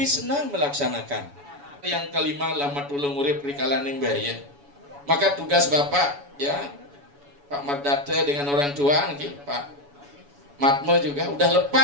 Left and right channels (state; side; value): late; left; 7.1 ms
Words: senang melaksanakan. Yang kelima, lama tulung urip rikalaning bahaya. Maka tugas Bapak ya, Pak Mardate dengan orang tua, Pak Matmo juga udah